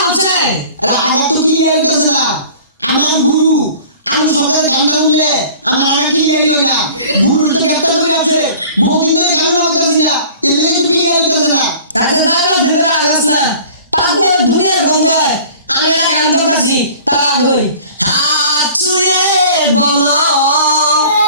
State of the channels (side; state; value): both; inverted; correlation -0.46